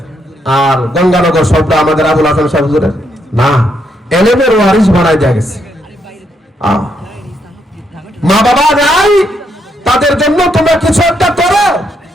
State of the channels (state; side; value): normal; both; correlation 0.77